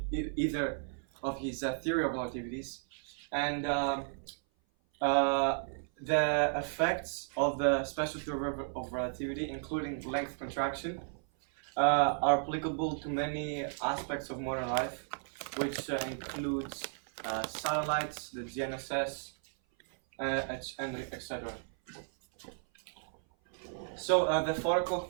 Either of his theory of relativities, and the effects of the special theory of relativity, including length contraction, are applicable to many aspects of modern life, which includes satellites, the GNSS, and etc. So the 4 o'clock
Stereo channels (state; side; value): silent; left; 55 dB below the other